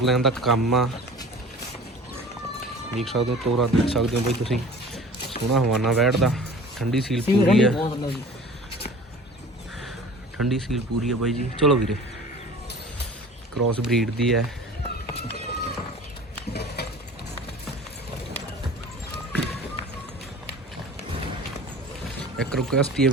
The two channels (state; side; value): normal; both; correlation 0.43